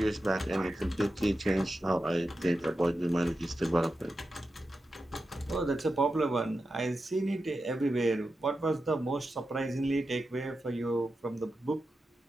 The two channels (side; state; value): both; normal; correlation 0.90